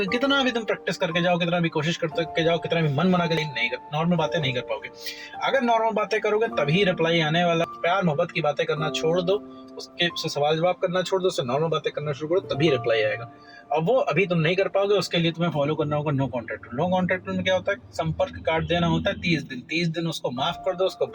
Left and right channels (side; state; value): both; identical; correlation 1.00